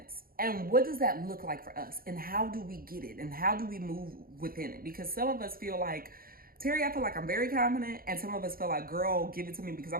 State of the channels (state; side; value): late; left; 0.42 ms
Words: and what does that look like for us, and how do we get it, and how do we move within it? Because some of us feel like, Terry, I feel like I'm very confident, and some of us feel like, girl, give it to me because